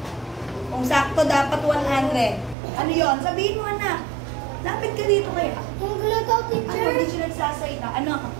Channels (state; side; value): drops out; left; at 2.6 s